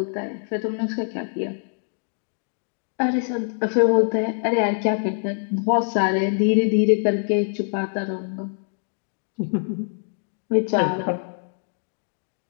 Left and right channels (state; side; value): silent; right; 62 dB below the other